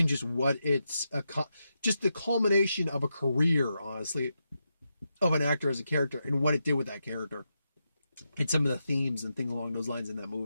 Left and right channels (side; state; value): both; inverted; correlation -0.86